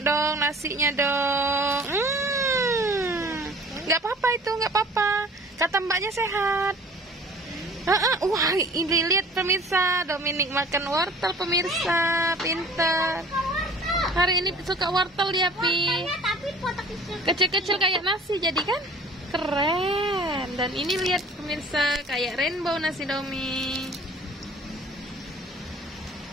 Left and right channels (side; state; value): both; normal; correlation 0.48